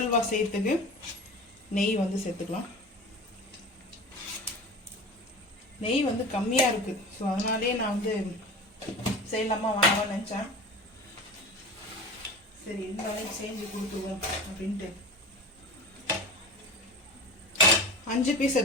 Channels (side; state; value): both; normal; correlation 0.33